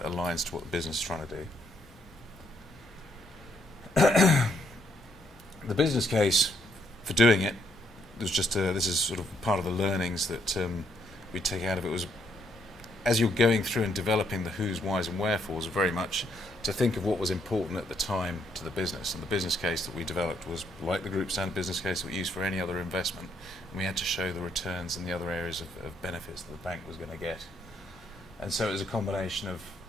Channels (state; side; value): normal; both; correlation 0.73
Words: aligns to what the business is trying to do. The business case for doing it was just this is sort of part of the learnings that we take out of it, was as you're going through and developing the who's, why's and wherefores, very much to think of what was important at the time to the business. And the business case that we developed was like the group standard business case that we use for any other investment. And we had to show the returns and the other areas of benefits that the bank was going to get. And so it was a combination